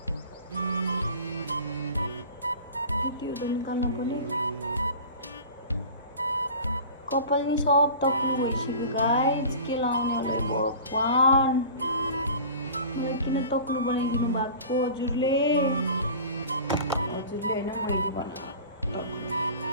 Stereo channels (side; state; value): both; inverted; correlation -0.39